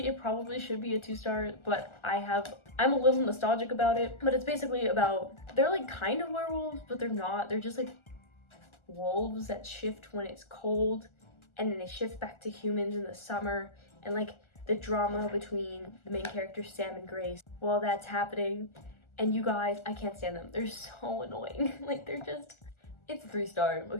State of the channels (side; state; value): right; late; 1.4 ms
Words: it probably should be a 2-star, but I'm a little nostalgic about it. But it's basically about, they're like kind of werewolves, but they're not. They're just like wolves that shift when it's cold, and then they shift back to humans in the summer, and like the drama between the main characters Sam and Grace while that's happening. And you guys, I can't stand them. They're so annoying. Like, they're just, it's a 3-star,